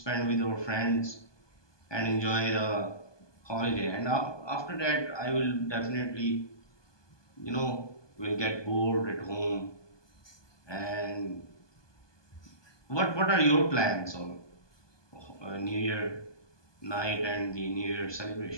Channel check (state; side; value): late; right; 1.2 ms